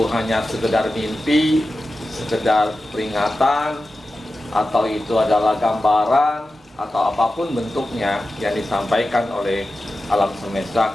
hanya sekedar mimpi, sekedar peringatan, atau itu adalah gambaran, atau apapun bentuknya yang disampaikan oleh alam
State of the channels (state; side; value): normal; both; correlation 0.93